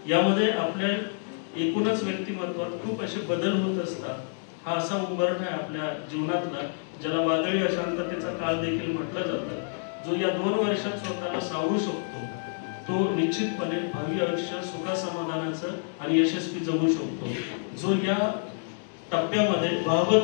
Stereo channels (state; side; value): silent; right; digital silence